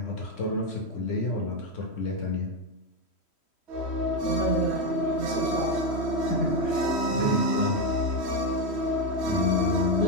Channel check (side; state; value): right; late; 3.1 ms